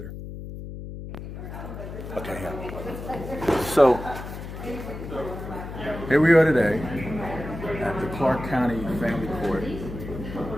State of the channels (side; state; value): left; noise; hum, 9 dB below the sound